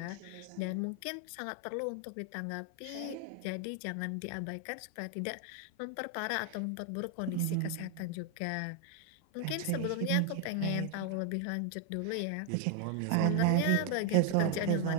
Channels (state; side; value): different; both; correlation 0.01